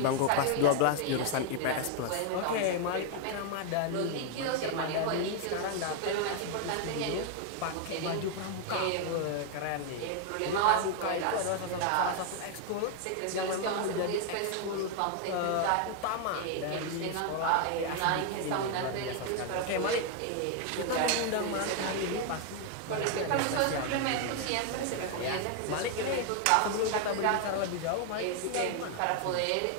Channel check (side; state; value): both; different; correlation 0.00